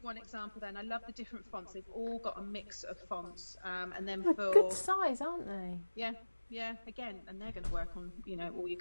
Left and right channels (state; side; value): inverted; both; correlation -1.00